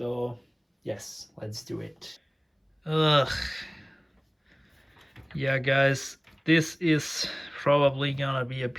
yes, let's do it. Ugh. Yeah, guys, this is probably gonna be a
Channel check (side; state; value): both; identical; correlation 1.00